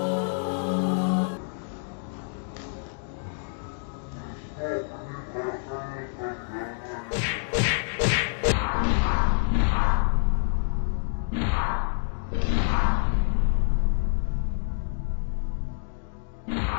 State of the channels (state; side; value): silent; right; digital silence